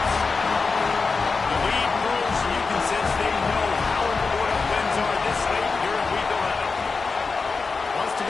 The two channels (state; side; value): quieter; right; 4.5 dB